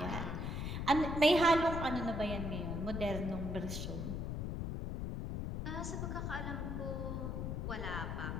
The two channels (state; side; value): noise; left; rumble, 3 dB below the sound